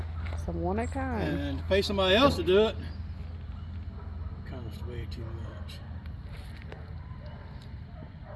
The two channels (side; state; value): both; identical; correlation 1.00